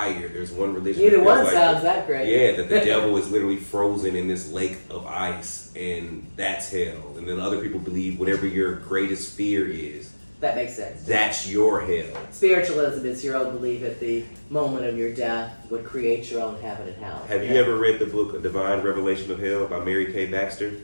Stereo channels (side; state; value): both; inverted; correlation -1.00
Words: There's one religion. Neither one sounds that great. Yeah, that the devil is literally frozen in this lake of ice, and that's hell. And then other people believe whatever your greatest fear is. That makes sense. That's your hell. Spiritualism is your own belief at the moment of your death would create your own heaven and hell. Have you ever read the book A Divine Revelation of Hell by Mary K. Baxter?